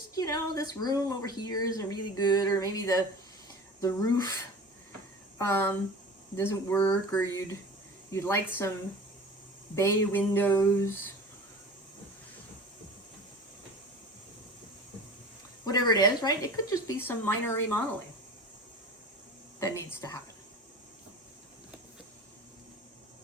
you know, this room over here isn't really good, or maybe the roof doesn't work, or you'd like some bay windows. Whatever it is, right? It could just be some minor remodeling that needs to happen.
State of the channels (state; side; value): normal; both; correlation 0.38